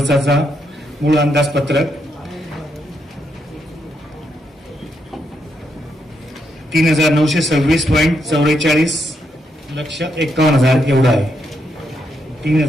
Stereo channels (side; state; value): both; normal; correlation 0.79